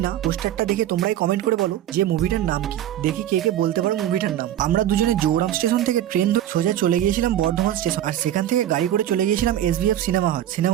না। পোস্টারটা দেখে তোমরাই কমেন্ট করে বলো যে মুভিটার নাম কি, দেখি কে কে বলতে পারো মুভিটার নাম। আমরা দুজনে জৌরাম স্টেশন থেকে ট্রেন ধরে সোজা চলে গিয়েছিলাম বর্ধমান স্টেশন, আর সেখান থেকে গাড়ি করে চলে গিয়েছিলাম SBF সিনেমা হল।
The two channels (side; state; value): left; quieter; 11.9 dB